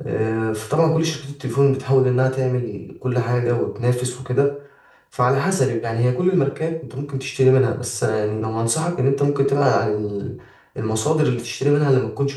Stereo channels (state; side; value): identical; both; correlation 1.00